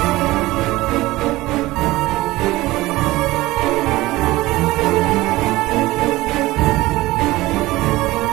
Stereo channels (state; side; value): quieter; left; 18.7 dB